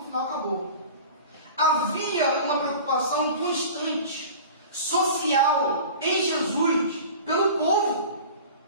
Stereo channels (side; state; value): both; inverted; correlation -0.38